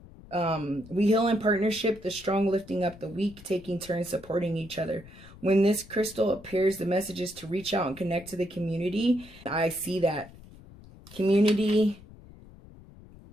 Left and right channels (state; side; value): noise; left; rumble, 20 dB below the sound